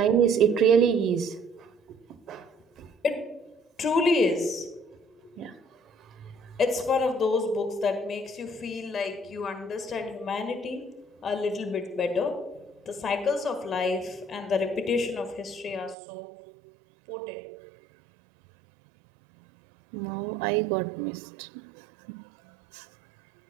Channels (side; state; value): left; drops out; at 16.0 s